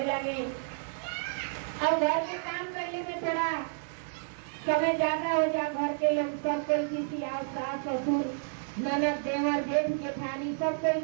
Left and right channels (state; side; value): silent; left; 57 dB below the other